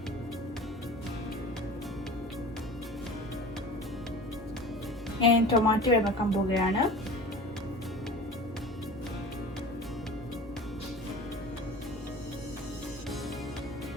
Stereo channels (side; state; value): both; normal; correlation 0.37